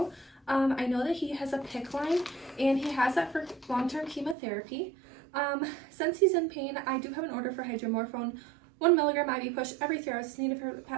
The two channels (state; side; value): drops out; left; at 4.4 s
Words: I know that he has a PICC line, and he has that for long-term chemotherapy. Since he's in pain, I do have an order for hydromorphone, 1 milligram IV push every 3 hours is needed for